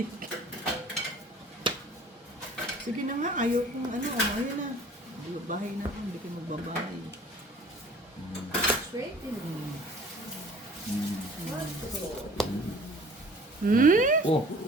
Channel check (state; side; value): normal; both; correlation 0.49